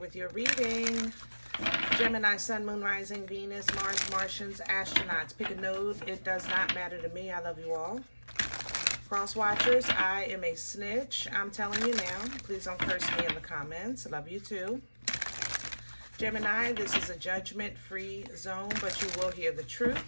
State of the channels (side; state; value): both; inverted; correlation -1.00